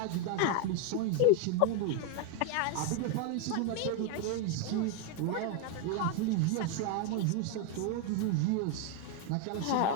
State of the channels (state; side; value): different; both; correlation 0.01